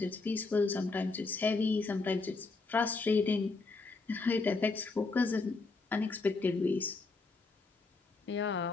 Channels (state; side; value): quieter; right; 3.9 dB